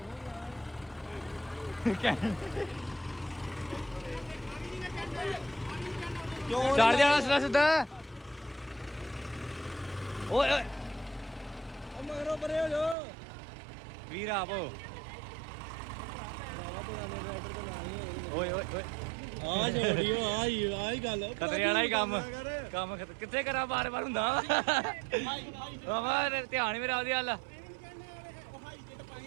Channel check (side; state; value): left; drops out; at 13.0 s